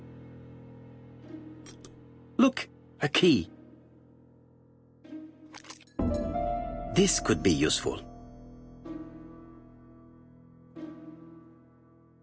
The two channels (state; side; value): identical; both; correlation 1.00